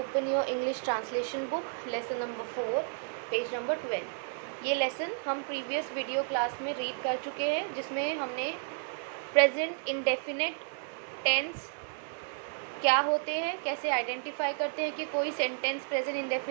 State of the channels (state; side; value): silent; left; 56 dB below the other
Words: your English translation book, lesson number 4, page number 12। ये lesson हम previous video class में read कर चुके हैं, जिसमें हमने प्रेजेंट इंडेफिनिट टेंस क्या होते हैं, कैसे आइडेंटिफाई करते हैं कि कोई सेंटेंस प्रेजेंट